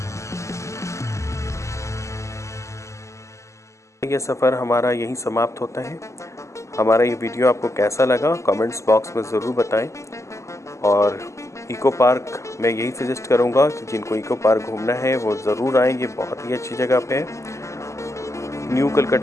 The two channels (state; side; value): late; right; 0.14 ms